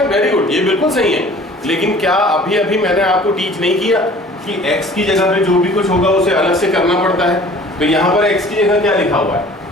very good, ये बिल्कुल सही है। लेकिन क्या अभी मैंने आपको टीच नहीं किया कि x की जगह पे जो भी कुछ होगा उसे अलग से करना पड़ता है? तो यहाँ पर x की जगह क्या लिखा हुआ है?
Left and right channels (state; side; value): normal; both; correlation 0.48